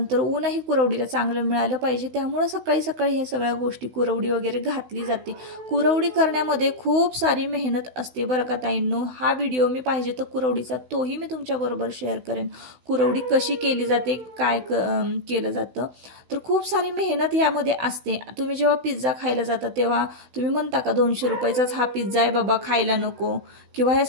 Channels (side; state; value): left; late; 16 ms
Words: ऊनही कुरवडीला चांगलं मिळालं पाहिजे, त्यामुळे सकाळी ह्या सगळ्या गोष्टी कुरवडी वगैरे घातली जाते. कुरवडी करण्यामध्ये खूप सारी मेहनत असते बरं का ताईंनो. हा व्हिडिओ मी पाहिजे तर कुरवडीचा तोही मी तुमच्याबरोबर शेअर करेन. कुरवडी कशी केली जाते, काय केलं जातं, तर खूप सारी मेहनत यामध्ये असते. तुम्ही जेव्हा पिझ्झा खायला जाता तेव्हा तुम्ही म्हणता का 200 रुपयाचाच हा पिझ्झा आहे बाबा, खायला नको, किंवा ह्या